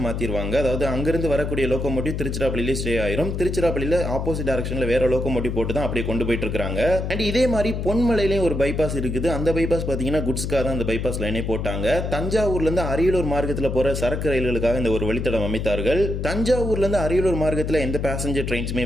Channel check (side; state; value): left; noise; hum, 3 dB below the sound